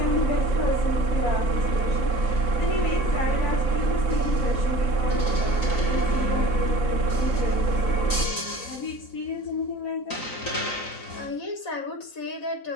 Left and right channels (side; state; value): right; late; 3.9 ms